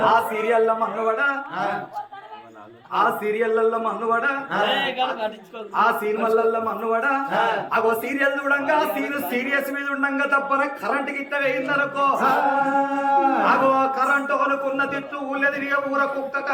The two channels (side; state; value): both; identical; correlation 1.00